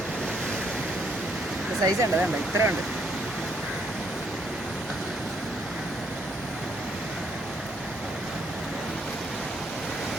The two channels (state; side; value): normal; both; correlation 0.70